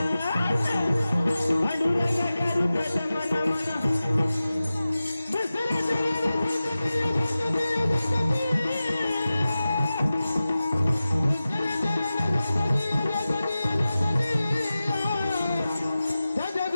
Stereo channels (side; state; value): both; inverted; correlation -0.95